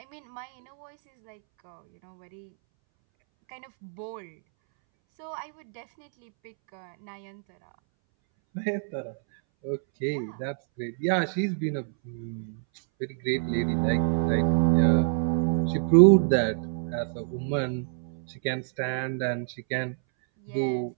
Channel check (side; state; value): left; silent; 60 dB below the other